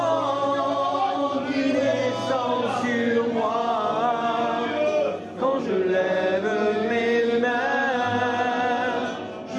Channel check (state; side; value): identical; both; correlation 1.00